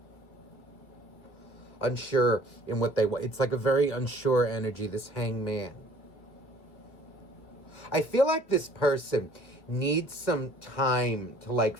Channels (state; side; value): late; right; 2.1 ms